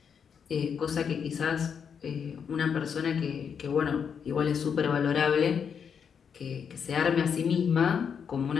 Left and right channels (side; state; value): right; quieter; 7.0 dB